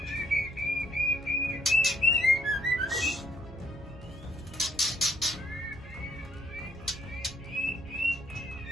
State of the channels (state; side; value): normal; both; correlation 0.67